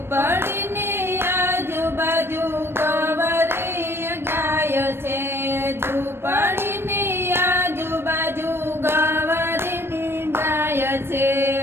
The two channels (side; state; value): left; late; 0.12 ms